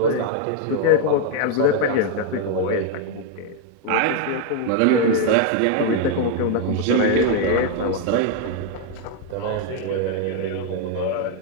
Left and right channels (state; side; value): different; both; correlation 0.01